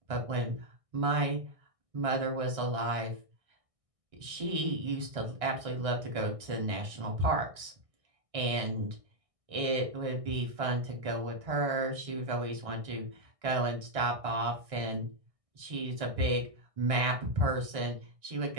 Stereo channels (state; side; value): late; left; 1.6 ms